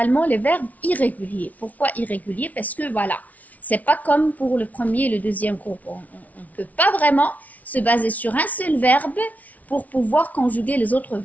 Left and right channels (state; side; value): late; right; 0.072 ms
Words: les verbes irréguliers. Pourquoi irréguliers? Parce que voilà, c'est pas comme pour le premier et le deuxième groupe. On ne peut pas vraiment se baser sur un seul verbe pour pouvoir conjuguer les autres